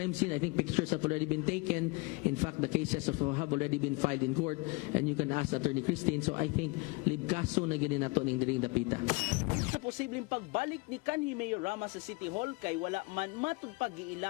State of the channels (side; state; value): right; quieter; 26.6 dB